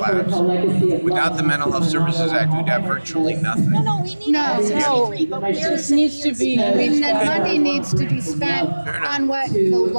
Without the Mental Health Services Act, we'd have virtually nothing. No, we need No. 63, but It just needs to be. I mean, the money needs to be spent on what the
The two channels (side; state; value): both; inverted; correlation -1.00